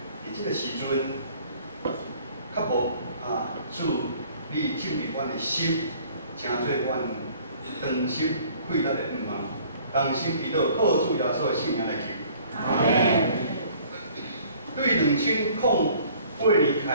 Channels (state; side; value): inverted; both; correlation -0.55